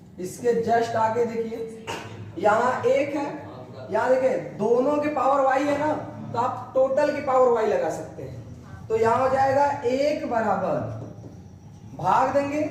इसके जस्ट आगे देखिए यहाँ 1 है, यहाँ देखिए दोनों के पावर y है ना, तो आप टोटल की पावर y लगा सकते हैं। तो यहाँ हो जाएगा 1 बराबर, भाग देंगे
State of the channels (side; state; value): both; identical; correlation 1.00